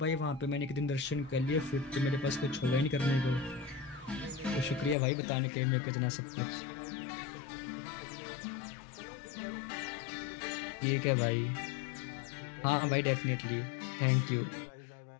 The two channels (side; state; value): right; drops out; at 5.0 s